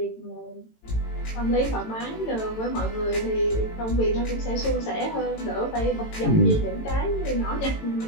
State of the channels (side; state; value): right; late; 18 ms